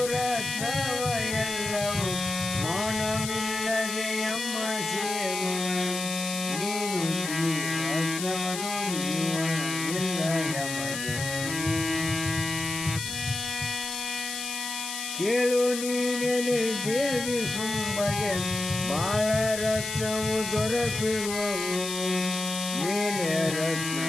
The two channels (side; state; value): left; noise; hiss, 6 dB below the sound